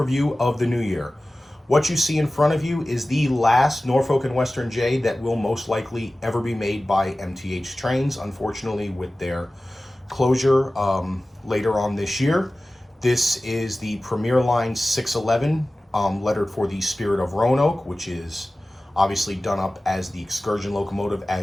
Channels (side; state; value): both; normal; correlation 0.96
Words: of the new year. What you see in front of you is the last Norfolk and Western J that will most likely ever be made by MTH trains, unfortunately with their closure later on this year. This is the Premier Line 611, lettered for the Spirit of Roanoke, which is obviously done up as the excursion locomotive